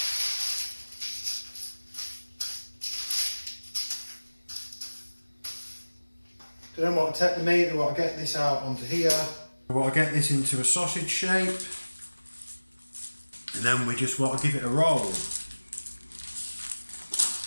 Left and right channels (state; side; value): inverted; both; correlation -1.00